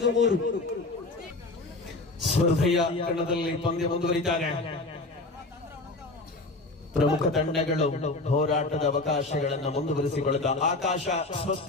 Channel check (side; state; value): right; quieter; 3.1 dB